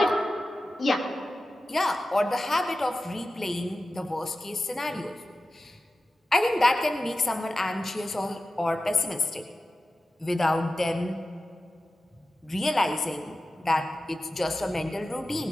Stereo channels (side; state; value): both; normal; correlation 0.94